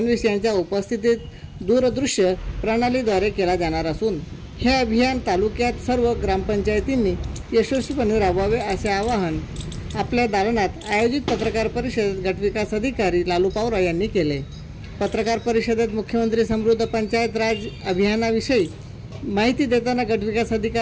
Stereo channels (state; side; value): identical; both; correlation 1.00